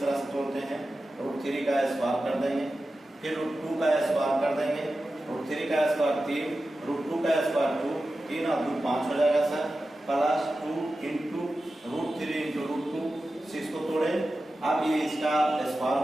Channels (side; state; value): both; normal; correlation 0.93